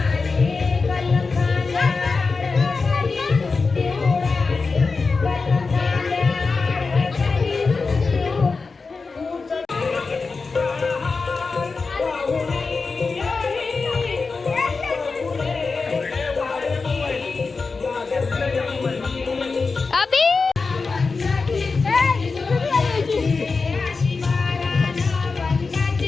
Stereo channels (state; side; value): quieter; right; 4.4 dB